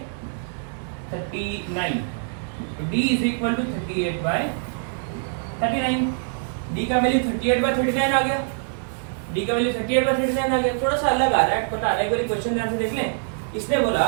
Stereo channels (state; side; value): silent; left; digital silence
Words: 39। तो D is equal to 38 by 39। D का वैल्यू 38 बाय 39 आ गया, D का वैल्यू 38 बाय 39 आ गया। थोड़ा सा अलग आ रहा है, पता नहीं, एक बार क्वेश्चन ध्यान से देख लें। इसने